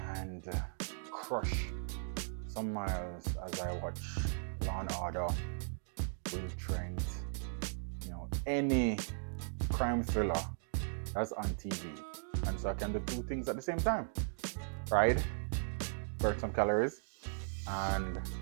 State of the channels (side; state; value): left; silent; digital silence